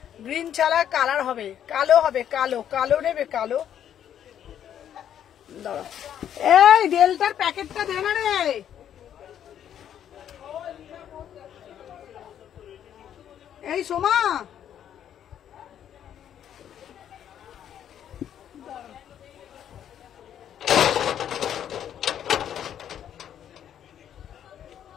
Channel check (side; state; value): right; quieter; 9.8 dB